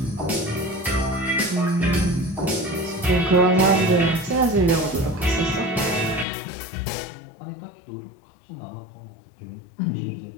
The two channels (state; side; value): drops out; right; at 6.2 s